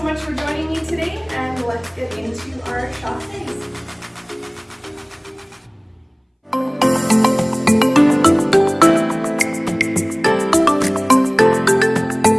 much for joining me today, and let's get into our chasses.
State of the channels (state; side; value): identical; both; correlation 1.00